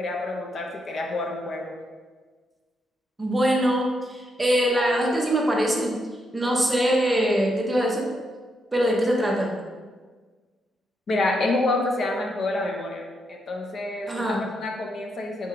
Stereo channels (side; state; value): both; normal; correlation 0.80